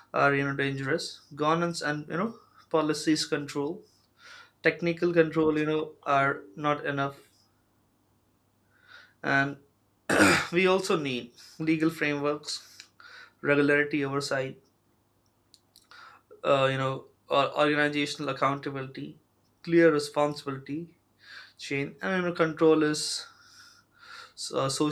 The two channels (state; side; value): identical; both; correlation 1.00